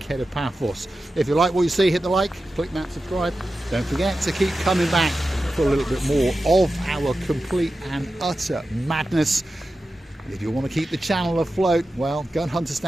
Paphos. If you like what you see, hit the like, click that subscribe. Don't forget to keep coming back for a little bit more of our complete and utter madness. If you want to keep the channel afloat, well, go and hunt us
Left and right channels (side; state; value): both; normal; correlation 0.92